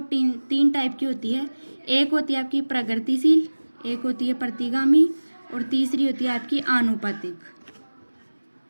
तीन टाइप की होती है। एक होती है आपकी प्रगतिशील, एक होती है प्रतिगामी और तीसरी होती है आपकी आनुपातिक।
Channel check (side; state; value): both; inverted; correlation -1.00